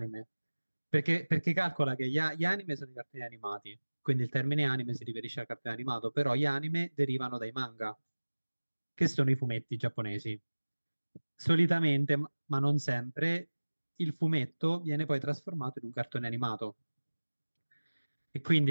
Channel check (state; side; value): inverted; both; correlation -1.00